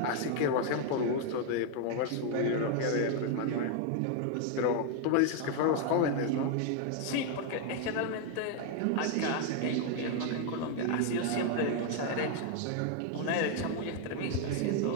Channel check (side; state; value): both; different; correlation 0.00